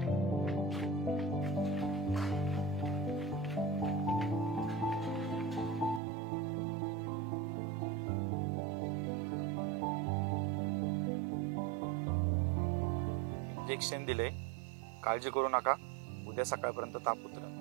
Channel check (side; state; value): left; drops out; at 6.0 s